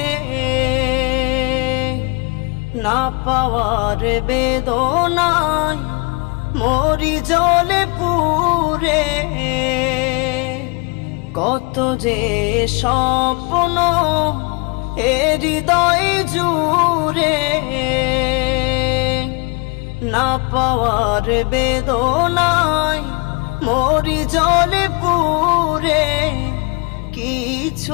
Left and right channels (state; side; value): quieter; right; 28.5 dB